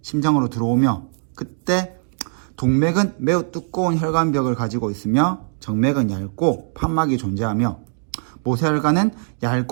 심장으로 들어오며, 그때 동맥은 매우 두꺼운 혈관벽을 가지고 있으며 정맥은 얇고 판막이 존재하며 모세혈관은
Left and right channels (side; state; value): left; silent; digital silence